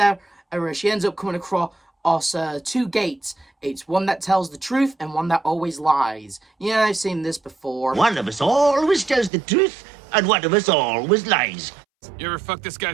she ends up coming across two gates. It's one that tells the truth and one that always lies. Yeah, I've seen this before. One of us always tells the truth, and one of us always lies. You ever fuck this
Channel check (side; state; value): left; drops out; at 9.3 s